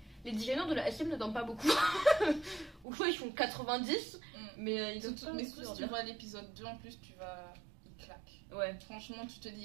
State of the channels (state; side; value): drops out; left; at 2.9 s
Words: designers de la SM ne donnent pas beaucoup. Ou soit ils font 90, mais ils donnent pas. Mais si tu vois l'épisode 2 en plus, il claque. Ouais. Franchement, tu te